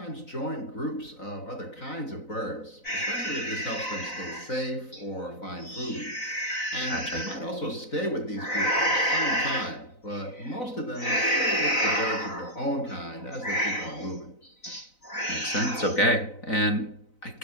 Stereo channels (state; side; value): late; right; 4.0 ms